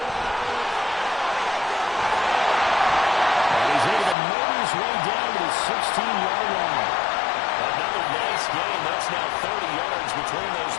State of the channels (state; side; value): drops out; right; at 4.2 s